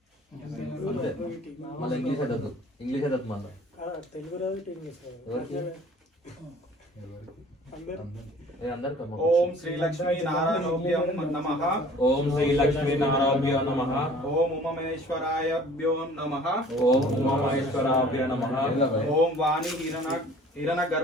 అంతే. మళ్ళీ ఇంగ్లీష్ అదద్దు, ఇంగ్లీష్ అదద్దు మళ్ళీ తెలుగు రాదు ఇంగ్లీష్ ఎవరికి? ఏ అందరికమ్మా. ఓం శ్రీ లక్ష్మీ నారాయణోభ్యం నమః ఓం శ్రీ లక్ష్మీ నారాయణాభ్యో నమః. ఓం ఉమమేశ్వరాయభ్యో నమః ఓం ఉమామహేశ్వరాభ్యో నమః. ఓం వాణి హిరణ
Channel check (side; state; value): both; normal; correlation 0.50